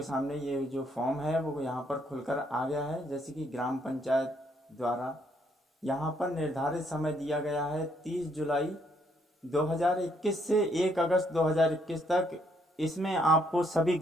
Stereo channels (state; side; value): normal; both; correlation 0.71